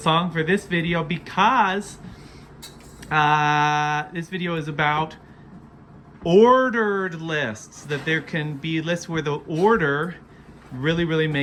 for this video because this video is about ordered lists, that there can be lists where the order really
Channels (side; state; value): both; identical; correlation 1.00